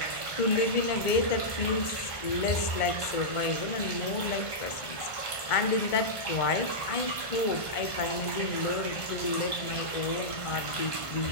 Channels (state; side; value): late; right; 1.5 ms